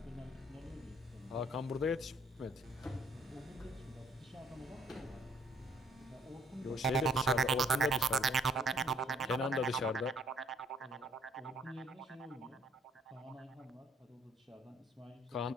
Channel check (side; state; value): both; normal; correlation 0.64